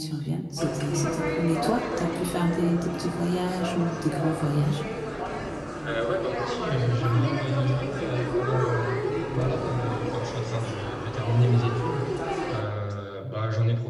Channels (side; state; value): both; identical; correlation 1.00